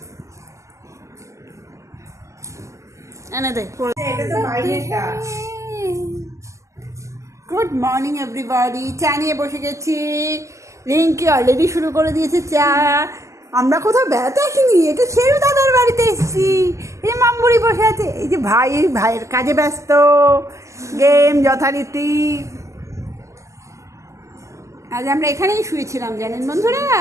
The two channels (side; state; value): left; late; 0.15 ms